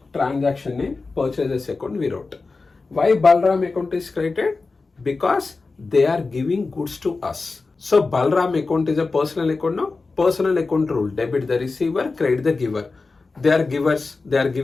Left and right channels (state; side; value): quieter; right; 3.9 dB